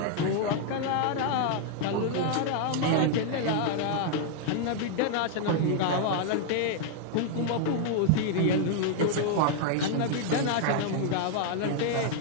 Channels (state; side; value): different; both; correlation 0.00